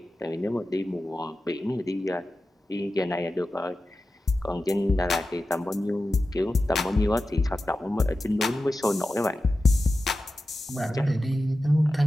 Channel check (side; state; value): both; normal; correlation 0.93